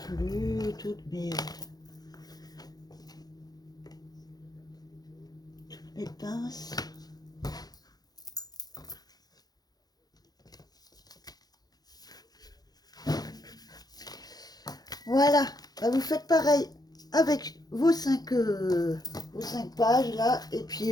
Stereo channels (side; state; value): right; late; 0.19 ms